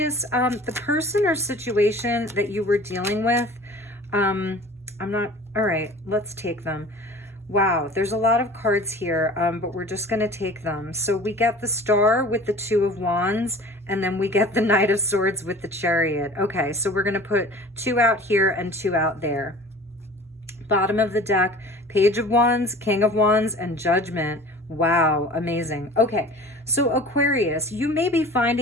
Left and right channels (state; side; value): normal; both; correlation 0.43